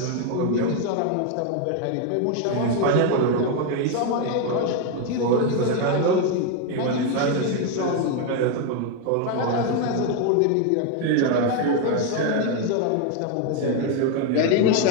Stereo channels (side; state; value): both; different; correlation 0.01